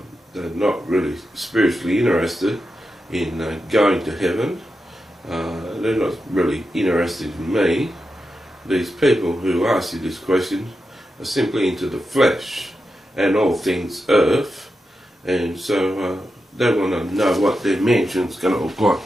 They're not really spiritually interested in going to heaven. They're not really interested in me. These people who ask you this question are simply into the flesh and all things earth, and so they want to know what their mansion's going to look like.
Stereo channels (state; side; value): normal; both; correlation 0.89